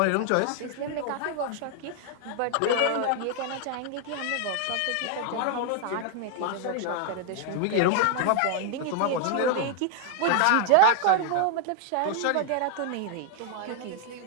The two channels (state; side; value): different; both; correlation 0.00